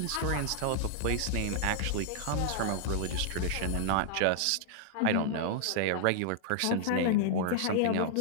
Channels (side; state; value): both; different; correlation -0.01